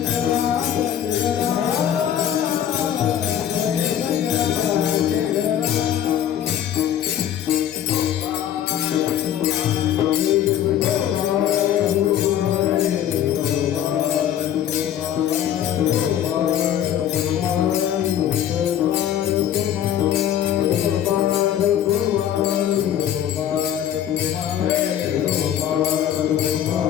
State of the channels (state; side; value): quieter; right; 10.5 dB